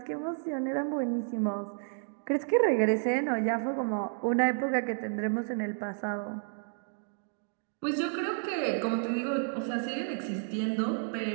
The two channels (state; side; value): silent; left; 57 dB below the other